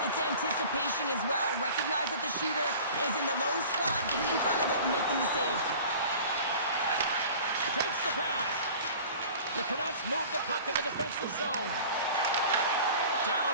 It's anticipation as well. Recognize that the shooter is in the low slot, getting in front of it and making the save. Takes the pass. The Canucks move the puck in the defensive zone.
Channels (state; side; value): inverted; both; correlation -0.42